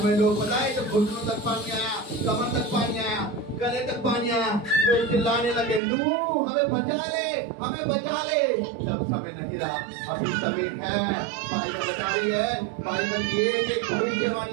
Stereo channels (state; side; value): drops out; left; at 5.8 s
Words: में लोग बताए तो घुटनों तक पानी आया, कमर तक पानी आया, गले तक पानी आया, लोग चिल्लाने लगे, नूह हमें बचा ले, हमें बचा ले। जब समय नहीं रहा, अभी समय है। बाइबल बता रही है, बाइबल की एक